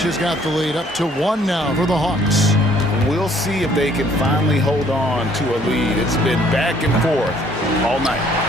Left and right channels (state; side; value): normal; both; correlation 0.61